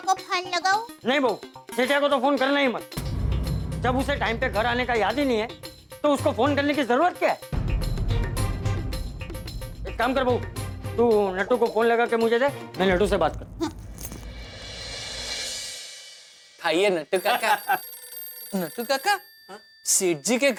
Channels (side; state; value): both; identical; correlation 1.00